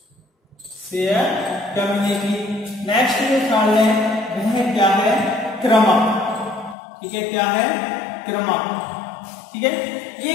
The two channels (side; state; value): right; drops out; at 6.8 s